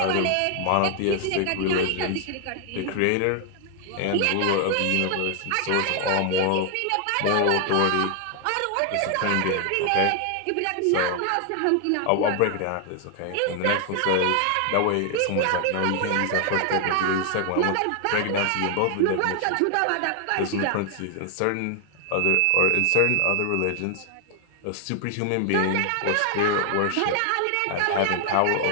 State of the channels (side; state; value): both; different; correlation 0.00